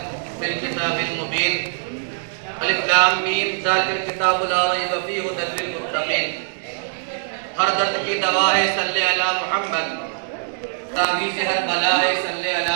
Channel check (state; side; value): silent; left; digital silence